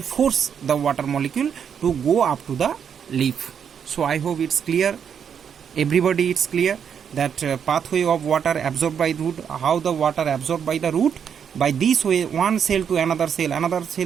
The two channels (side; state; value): left; quieter; 7.7 dB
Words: the water molecule to go up to the leaf. So I hope it's clear, everybody it's clear that pathway of water absorbed by root, how the water absorbed by the root. By this way one cell to another cell, another